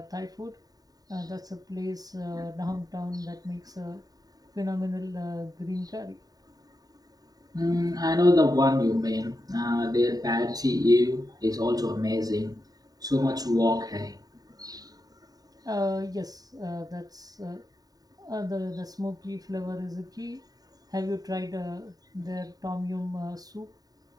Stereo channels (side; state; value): left; late; 0.18 ms